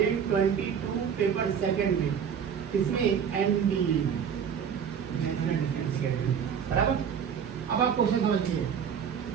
पेपर सेकंड में, इसमें एनडीए बराबर। अब आप क्वेश्चन समझिए,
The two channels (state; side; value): quieter; left; 7.5 dB